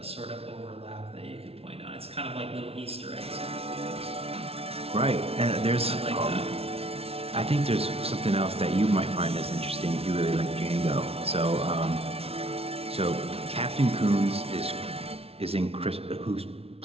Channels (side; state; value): left; late; 0.29 ms